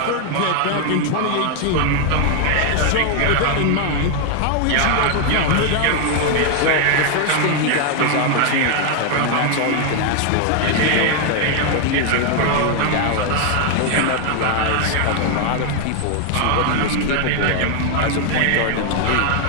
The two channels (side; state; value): both; different; correlation 0.00